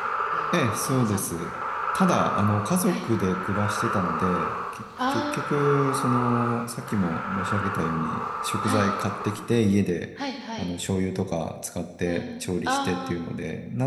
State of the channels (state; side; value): identical; both; correlation 1.00